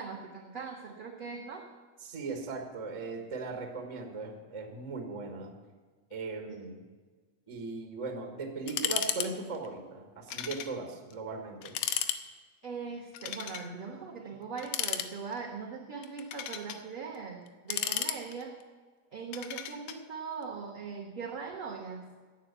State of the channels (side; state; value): right; late; 8.2 ms